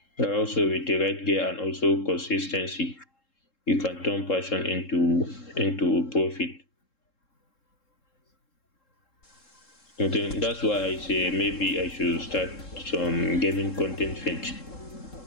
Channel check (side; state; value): right; late; 3.7 ms